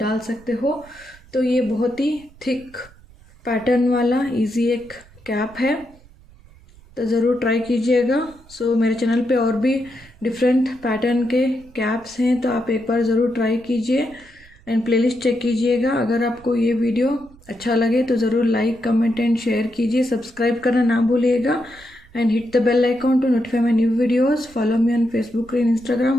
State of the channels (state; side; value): noise; right; rumble, 25 dB below the sound